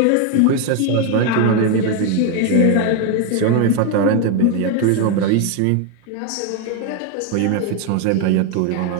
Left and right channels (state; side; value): different; both; correlation 0.01